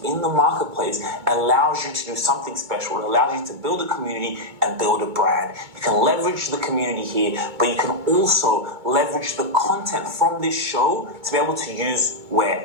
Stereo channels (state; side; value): late; left; 2.3 ms